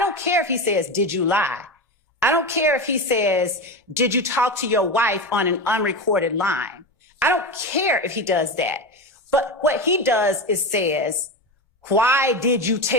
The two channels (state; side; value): normal; both; correlation 0.20